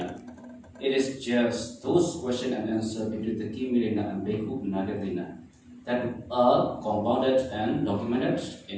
It is just those questions and answers between the King Milinda and Bhikkhu Nagadena that are compounded and documented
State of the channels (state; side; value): identical; both; correlation 1.00